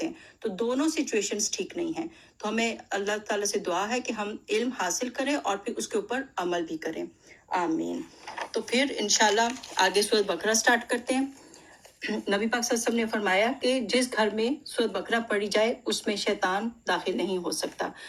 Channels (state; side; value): identical; both; correlation 1.00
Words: ہیں۔ تو دونوں سچویشنز ٹھیک نہیں ہیں۔ تو ہمیں اللہ تعالیٰ سے دعا ہے کہ ہم علم حاصل کریں اور پھر اس کے اوپر عمل بھی کریں، آمین۔ تو پھر انشاءاللہ آگے سورۃ بقرہ سٹارٹ کرتے ہیں۔ نبی پاک صلی اللہ علیہ وسلم نے فرمایا کہ جس گھر میں سورۃ بقرہ پڑھی جائے اس میں شیطان داخل نہیں ہو سکتا۔